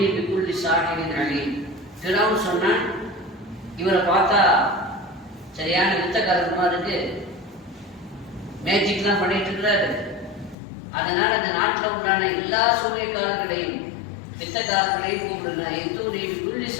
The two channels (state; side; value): drops out; right; at 10.6 s